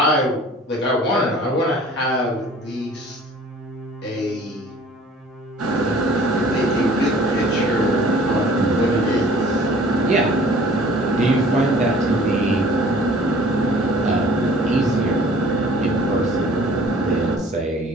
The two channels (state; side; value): normal; both; correlation 0.50